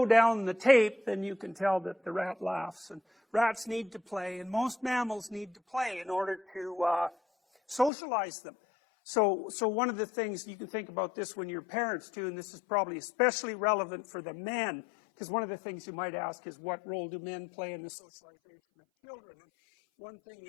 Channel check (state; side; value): drops out; right; at 7.9 s